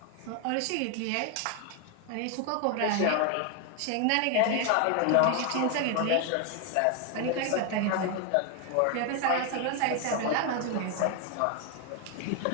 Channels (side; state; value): both; different; correlation 0.01